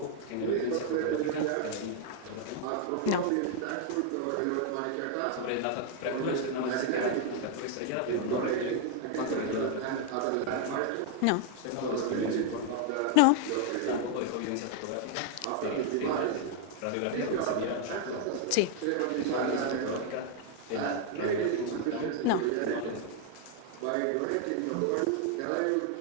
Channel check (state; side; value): different; both; correlation 0.00